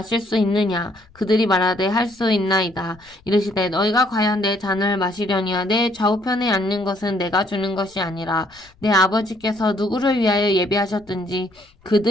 수 있느냐? 그들이 말하되 할 수 있나이다. 이르시되 너희가 과연 내 잔을 마시려니와 내 좌우편에 앉는 것은 내가 주는 것이 아니라 내 아버지께서 누구를 위하여 예비하셨든지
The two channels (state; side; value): noise; left; rumble, 29 dB below the sound